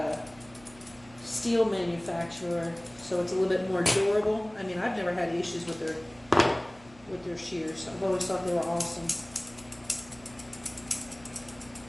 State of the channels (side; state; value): right; noise; hum, 24 dB below the sound